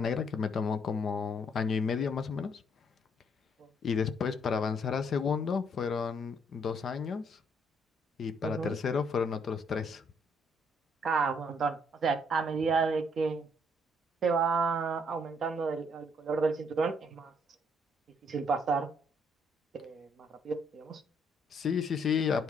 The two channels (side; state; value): both; normal; correlation 0.69